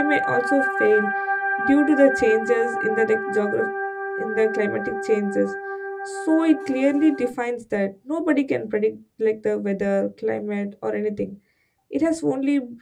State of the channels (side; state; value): both; identical; correlation 1.00